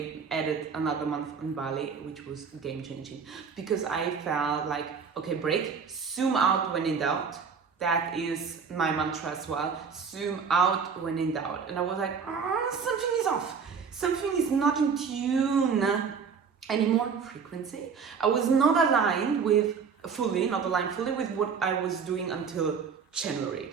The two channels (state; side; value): quieter; left; 6.0 dB